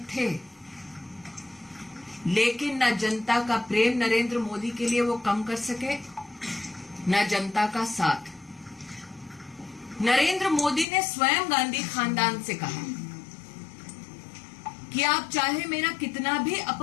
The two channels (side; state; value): right; drops out; at 10.9 s